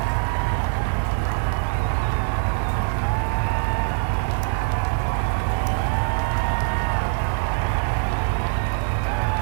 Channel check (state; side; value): silent; left; 60 dB below the other